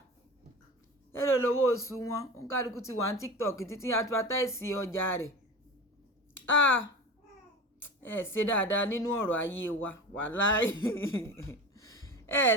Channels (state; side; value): normal; both; correlation 0.31